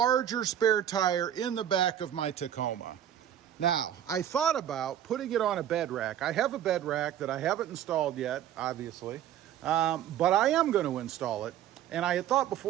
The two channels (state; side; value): quieter; left; 10.8 dB